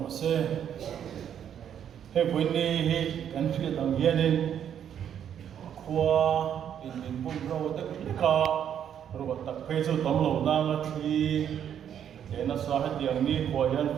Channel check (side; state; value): left; quieter; 9.2 dB